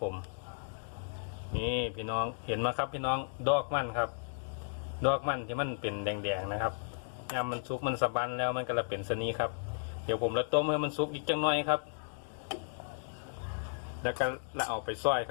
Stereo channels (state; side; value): silent; right; digital silence